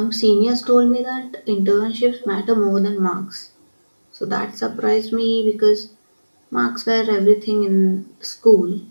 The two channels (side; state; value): both; inverted; correlation -1.00